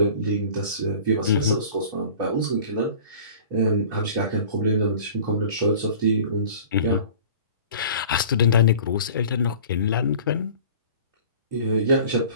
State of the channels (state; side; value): inverted; both; correlation -0.44